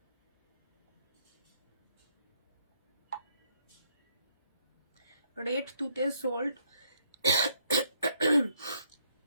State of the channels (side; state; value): both; inverted; correlation -0.70